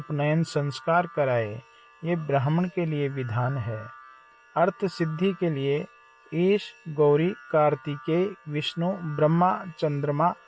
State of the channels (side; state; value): both; identical; correlation 1.00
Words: संस्कार कराए। ये ब्राह्मण के लिए विधान है। अर्थ सिद्धि के लिए ईश, गौरी, कार्तिकेय, विष्णु, ब्रह्मा, चंद्रमा